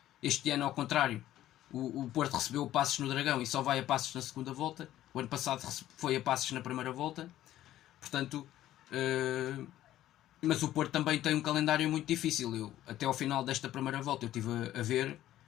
Este ano, ao contrário, o Porto recebeu o Passos no Dragão e só vai a Passos na segunda volta. O ano passado foi a Passos na primeira volta. Portanto, mas o Porto também tem um calendário muito difícil. Até ao final desta primeira volta eu estive a ver.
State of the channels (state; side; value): quieter; right; 13.4 dB